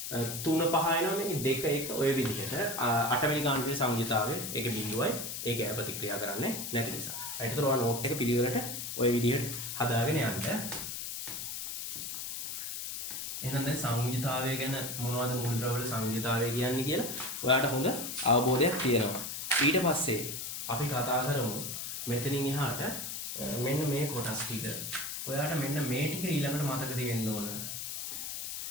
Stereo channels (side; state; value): left; noise; hiss, 5 dB below the sound